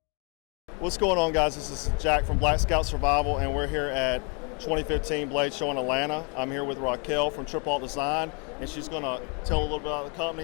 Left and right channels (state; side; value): quieter; right; 34.9 dB